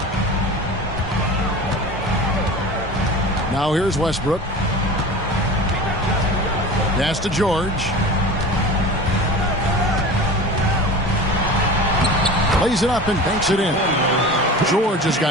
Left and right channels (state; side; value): normal; both; correlation 0.34